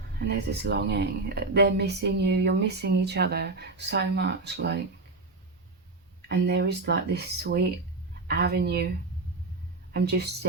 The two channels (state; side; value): quieter; left; 3.5 dB